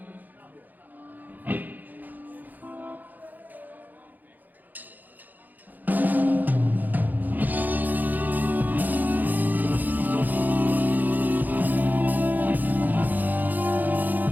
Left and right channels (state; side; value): late; left; 0.084 ms